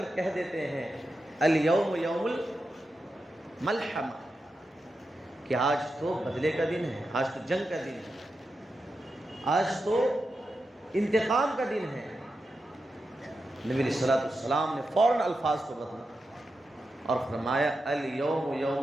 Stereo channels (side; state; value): both; normal; correlation 0.89